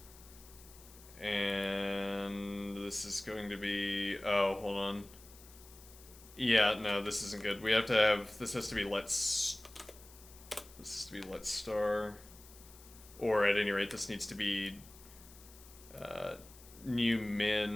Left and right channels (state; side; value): noise; left; hiss, 21 dB below the sound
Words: and this is going to be, oh, hold on. Yeah, no, this isn't good. We have to have, this has to be let's star, or at any rate, this needs to be new